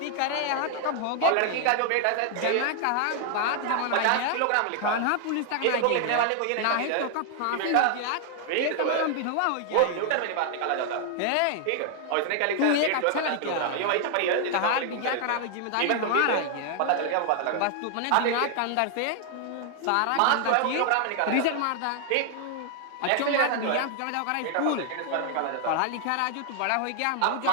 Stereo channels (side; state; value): both; different; correlation 0.00